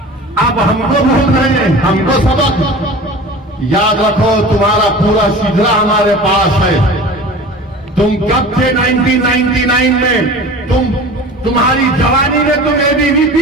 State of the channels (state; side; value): normal; both; correlation 0.38